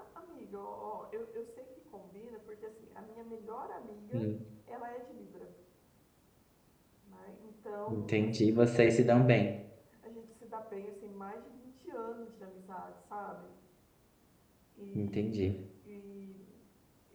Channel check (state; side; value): identical; both; correlation 1.00